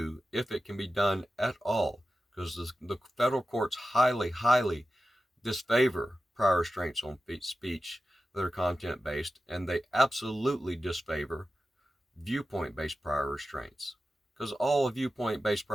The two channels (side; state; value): both; normal; correlation 0.93